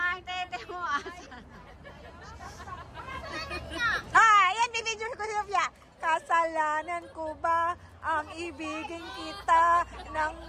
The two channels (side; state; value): both; identical; correlation 1.00